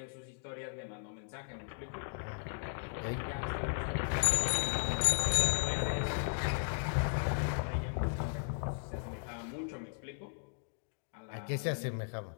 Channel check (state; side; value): silent; right; digital silence